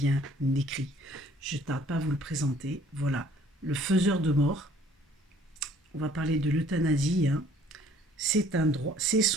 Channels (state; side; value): normal; both; correlation 0.57